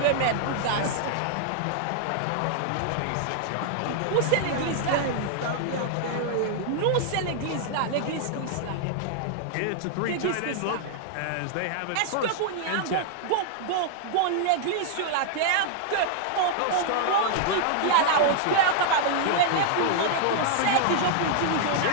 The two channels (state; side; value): different; both; correlation -0.01